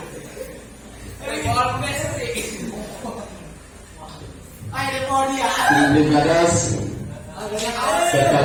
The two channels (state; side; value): identical; both; correlation 1.00